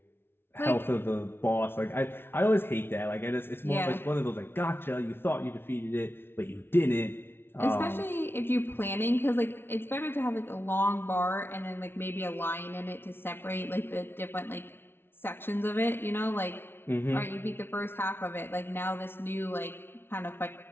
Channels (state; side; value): late; right; 0.11 ms